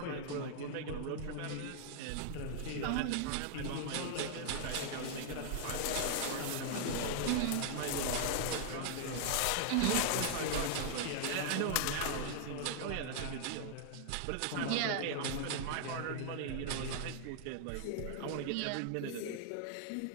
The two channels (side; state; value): both; different; correlation -0.01